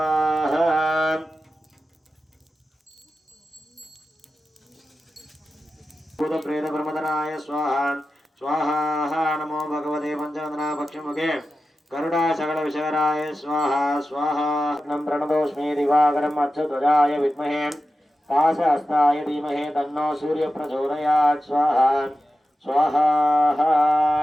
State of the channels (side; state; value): both; normal; correlation 0.92